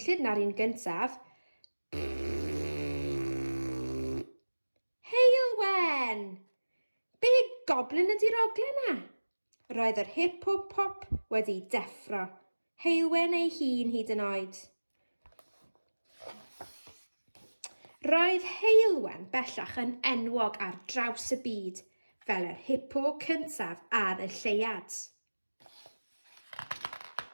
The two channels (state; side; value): inverted; both; correlation -1.00